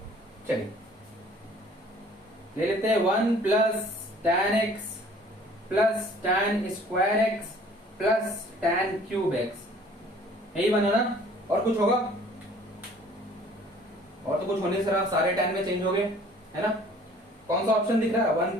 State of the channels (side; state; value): both; normal; correlation 0.53